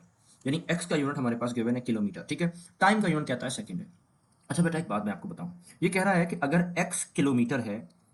यानी x का यूनिट हमारे पास गिवन है किलोमीटर। ठीक है, टाइम का यूनिट कहता है सेकंड है। अच्छा बेटा, एक बात मैं आपको बताऊं, ये कह रहा है कि अगर x किलोमीटर है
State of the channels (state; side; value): identical; both; correlation 1.00